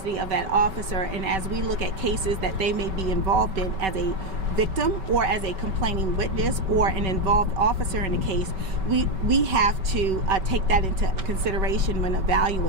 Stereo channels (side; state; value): left; late; 5.2 ms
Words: of that officer, and as we look at cases that they may be involved in as a victim or as a complaining witness or an involved officer in a case, we have to take that into consideration when